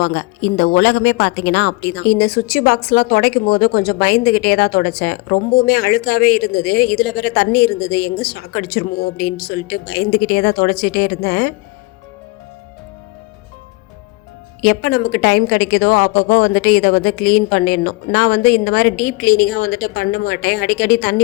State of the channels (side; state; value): right; quieter; 22.7 dB